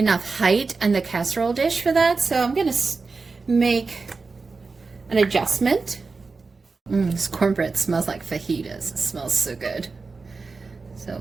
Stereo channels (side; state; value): left; quieter; 4.2 dB